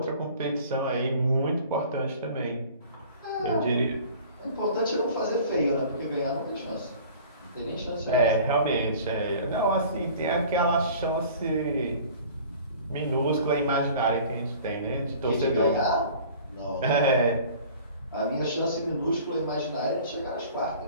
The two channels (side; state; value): both; inverted; correlation -0.46